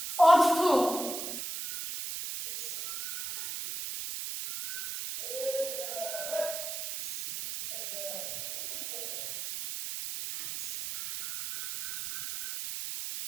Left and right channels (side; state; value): right; noise; hiss, 5 dB below the sound